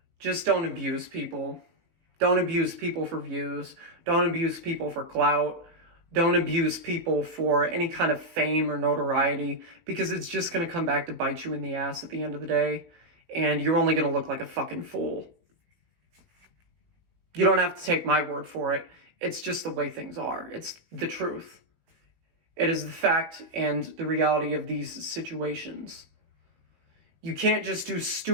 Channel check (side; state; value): left; late; 18 ms